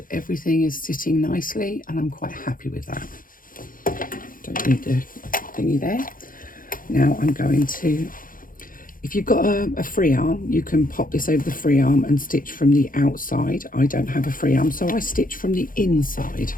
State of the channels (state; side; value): late; right; 0.40 ms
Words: Everything is sitting nicely, and I'm quite happy with that. Don't need the thingy there. Now I'm going to, if you've got a free arm, you can pop this over the free arm and stitch from the outside. I don't have a free arm, so I stitch from the inside.